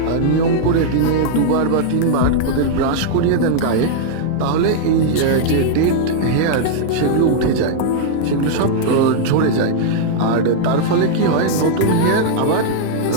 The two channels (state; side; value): different; both; correlation -0.01